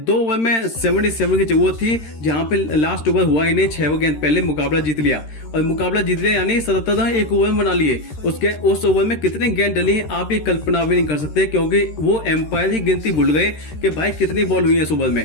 ओवर में 77 की जरूरत थी, जहां पे लास्ट ओवर हुआ ही नहीं, 6 गेंद पहले मुकाबला जीत लिया और मुकाबला जीत लिया यानी 77 रन एक ओवर में बना लिए। उस ओवर में कितने गेंद डली हैं आप ये कल्पना भी नहीं कर सकते, क्योंकि वो एम्पायर ही गिनती भूल गए कि भाई कितनी बॉल हुई है इस ओवर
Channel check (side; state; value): right; late; 13 ms